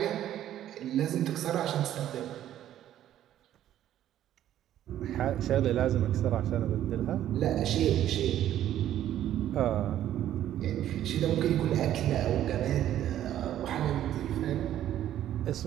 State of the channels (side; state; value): left; quieter; 11.9 dB